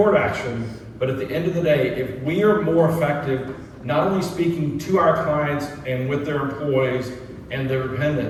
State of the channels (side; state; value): both; identical; correlation 1.00